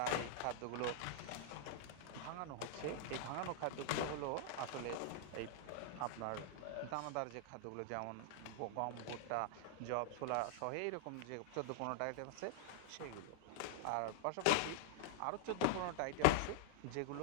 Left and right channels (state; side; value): different; both; correlation -0.01